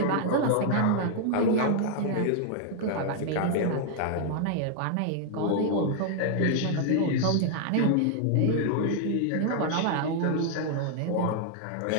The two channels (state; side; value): different; both; correlation 0.00